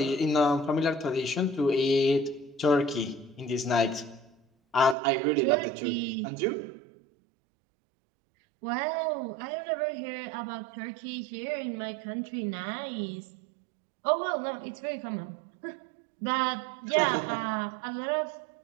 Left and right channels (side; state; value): left; drops out; at 5.0 s